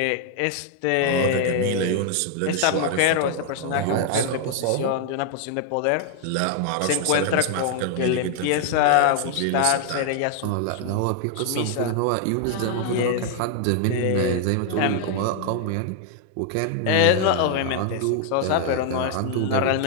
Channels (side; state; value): both; different; correlation 0.00